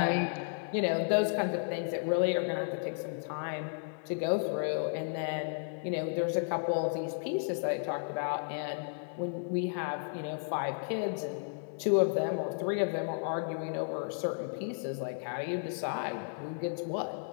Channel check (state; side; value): silent; right; digital silence